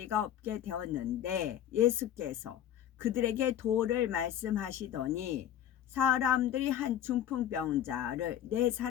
없게 되었는데 예수께서 그들에게 도를 말씀하시더니 사람들이 한 중풍병자를 네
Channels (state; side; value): quieter; right; 10.7 dB